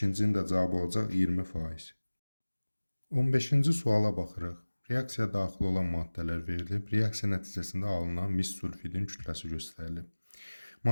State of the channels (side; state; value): both; inverted; correlation -1.00